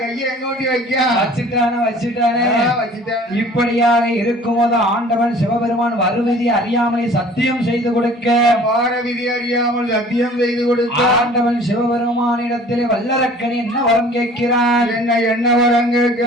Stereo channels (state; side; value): normal; both; correlation 0.49